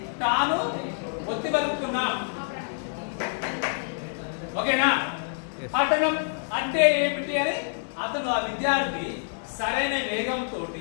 తాను ఒత్తి బతుకుతున్నాం. ఓకేనా? పఠనం అంటే ఏమిటి అని అతను ఆ విద్యార్థి సరైన వేగంతో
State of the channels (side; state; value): right; silent; digital silence